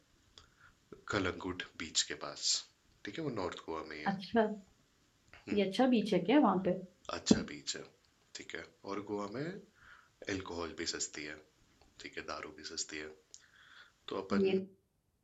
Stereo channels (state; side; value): identical; both; correlation 1.00